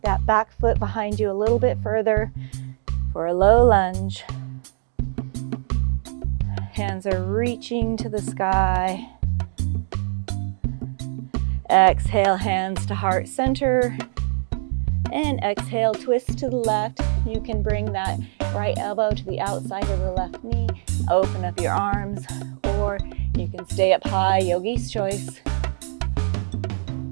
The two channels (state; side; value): silent; left; digital silence